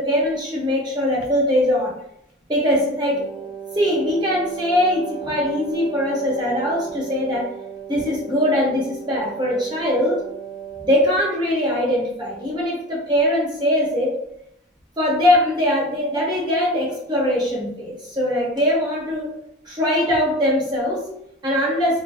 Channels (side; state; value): both; normal; correlation 0.35